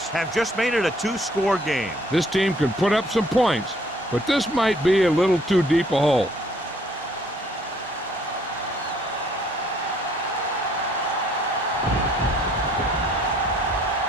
have just made it a two-score game. This team can put up some points, but this might be a little too deep a hole.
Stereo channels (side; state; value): both; normal; correlation 0.62